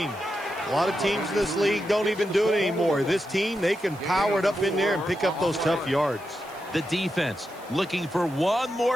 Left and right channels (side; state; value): right; noise; hiss, 24 dB below the sound